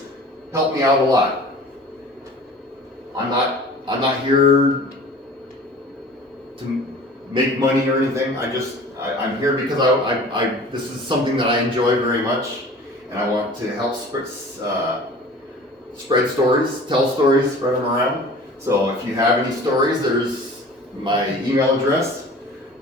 help me out a lot. I'm not here to make money or anything. I'm here because this is something that I enjoy very much, and I want to help spread stories, tell stories, spread them around. So if you have any stories, there's my email address.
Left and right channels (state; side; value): normal; both; correlation 0.44